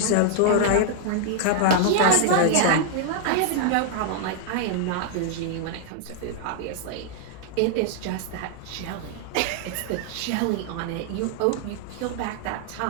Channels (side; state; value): both; different; correlation 0.00